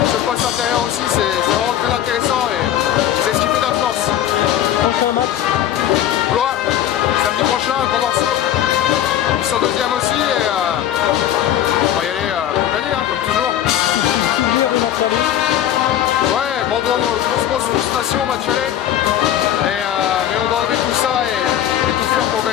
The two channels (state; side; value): quieter; right; 11.4 dB